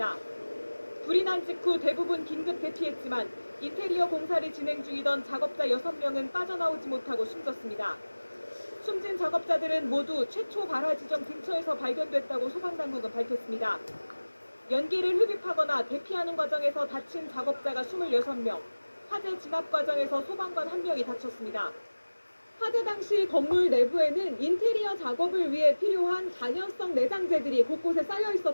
불이 난 직후 대부분 긴급 대피했지만 인테리어 공사를 진행 중이던 작업자 6명은 빠져나오지 못하고 숨졌습니다. 숨진 작업자들은 모두 최초 발화 지점 근처에서 발견됐다고 소방당국은 밝혔습니다. 연기를 흡입하거나 대피하는 과정에서 다친 작업자가 26명, 화재 진압 과정에서 소방관 1명이 다쳤습니다. 화재 당시 건물 내부에는 인테리어 작업을 위해 필요한 간연성 내장재들이 곳곳에 쌓여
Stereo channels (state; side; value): inverted; both; correlation -1.00